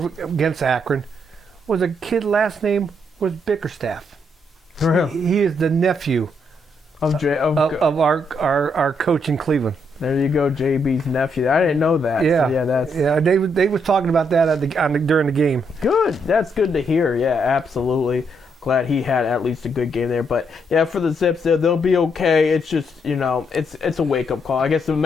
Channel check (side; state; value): both; normal; correlation 0.75